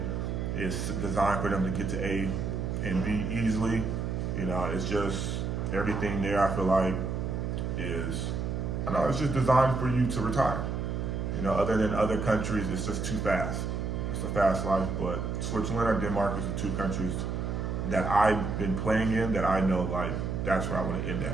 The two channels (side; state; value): right; noise; hum, 2 dB below the sound